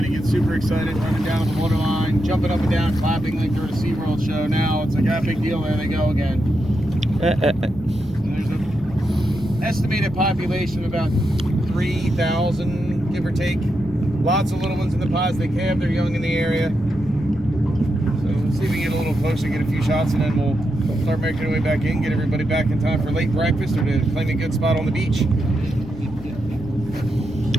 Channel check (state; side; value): noise; right; rumble, 16 dB below the sound